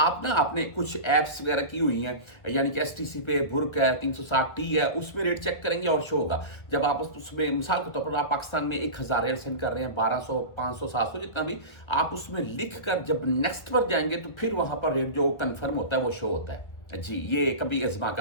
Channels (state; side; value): late; right; 1.7 ms